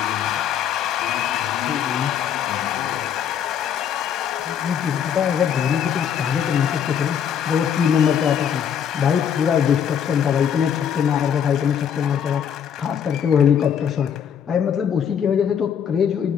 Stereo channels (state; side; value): quieter; right; 8.4 dB